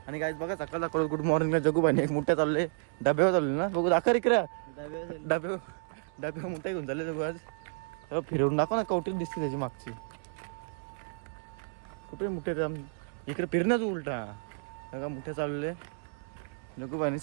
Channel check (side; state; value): left; silent; digital silence